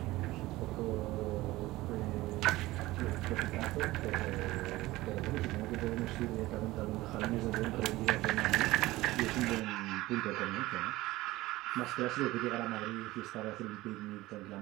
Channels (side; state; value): left; quieter; 18.4 dB